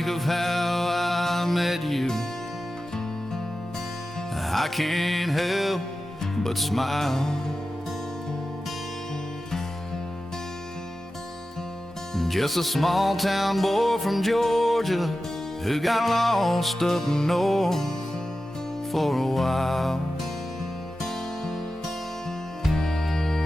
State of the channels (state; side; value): normal; both; correlation 0.93